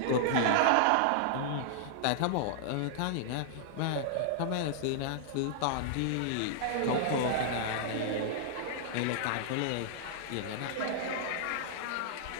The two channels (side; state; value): both; different; correlation -0.01